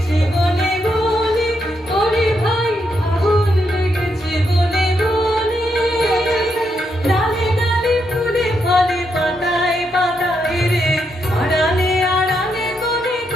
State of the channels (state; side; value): normal; both; correlation 0.80